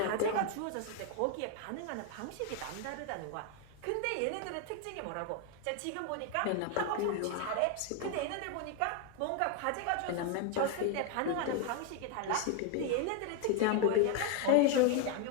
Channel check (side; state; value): both; different; correlation 0.01